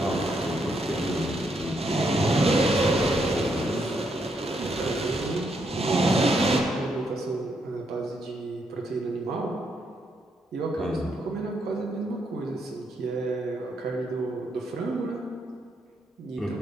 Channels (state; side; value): normal; both; correlation 0.77